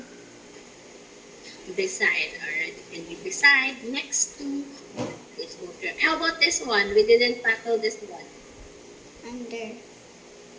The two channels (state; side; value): identical; both; correlation 1.00